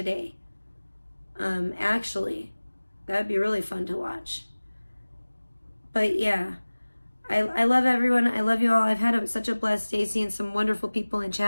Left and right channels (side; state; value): both; inverted; correlation -1.00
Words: Actually, that would be really fun to watch. But yeah, I love everyone. I love you all. I've had such a blessed day seeing some wonderful people in